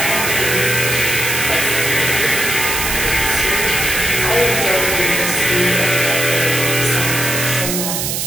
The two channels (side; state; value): right; noise; hiss, 1 dB below the sound